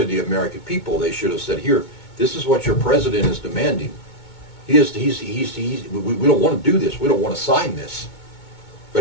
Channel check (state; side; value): late; right; 2.2 ms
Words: the American people. They should have said, "Here, this is what your president is demanding. We don't want to do this. We don't want to sign this,